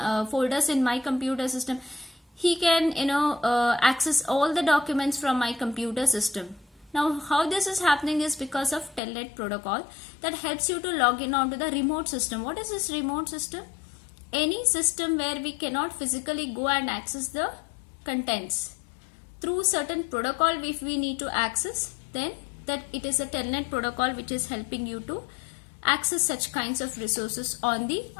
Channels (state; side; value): drops out; right; at 9.0 s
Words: folders in my computer system. He can access all the documents from my computer system. Now how this is happening is because of Telnet protocol that helps you to log in onto the remote system. What is this remote system? Any system where we cannot physically go and access the contents. Through certain protocol, if we need to access, then that it is a Telnet protocol which is helping you to access such kinds of resources on the